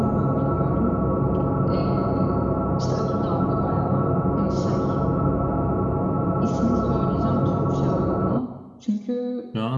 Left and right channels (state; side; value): identical; both; correlation 1.00